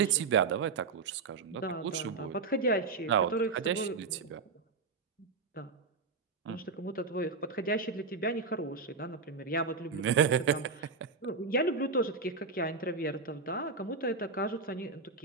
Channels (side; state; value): left; quieter; 4.5 dB